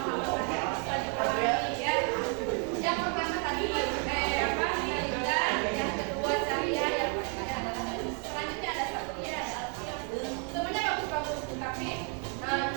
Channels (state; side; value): quieter; left; 39.3 dB